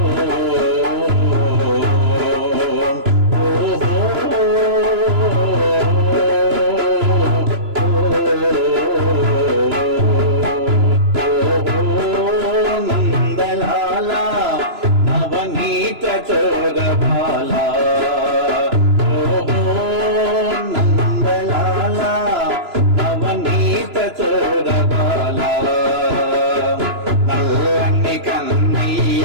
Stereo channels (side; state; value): left; late; 2.9 ms